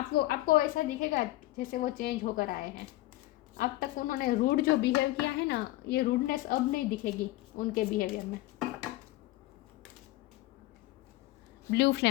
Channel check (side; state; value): right; quieter; 17.7 dB